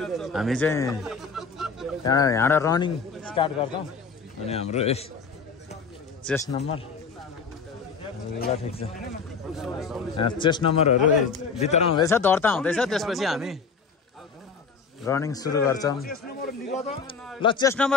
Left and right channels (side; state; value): right; quieter; 5.2 dB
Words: हामी चाहिँ यहाँबाट रनिङ स्टार्ट गर्छौँ अनि हाम्रो चेस्ट नम्बर ल ठिक छ चेस्ट नम्बरहरू भित्र हुँदैछ दर्ता हुँदैछ त्यसपछि हामी रनिङ सुरु गर्छौँ ल चेस्ट